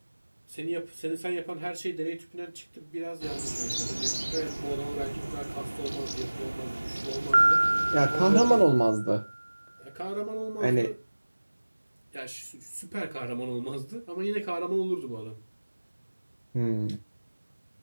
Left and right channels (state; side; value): inverted; both; correlation -1.00